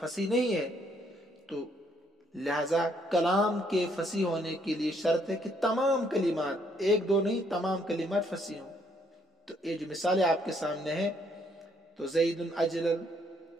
فصیح نہیں ہے. تو لہذا کلام کے فصیح ہونے کے لیے شرط ہے کہ تمام کلمات، ایک دو نہیں، تمام کلمات فصیح ہوں. تو یہ جو مثالیں آپ کے سامنے ہیں، تو زید اجلل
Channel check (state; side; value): normal; both; correlation 0.69